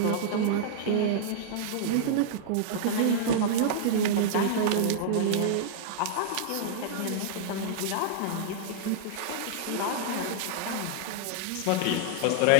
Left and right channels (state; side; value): different; both; correlation -0.01